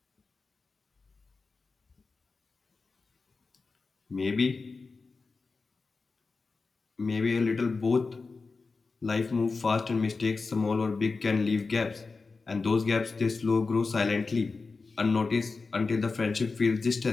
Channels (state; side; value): quieter; right; 4.2 dB